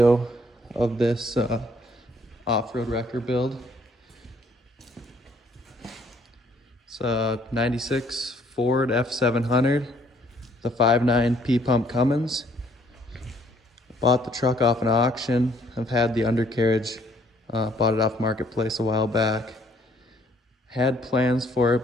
of this off-road wrecker build. It's a 96 Ford F700, the 5.9 P-pump Cummins. Bought the truck off an auction. I've had the undercarriage, bought it off Marketplace a while back. Had plans for it,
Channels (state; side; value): normal; both; correlation 0.64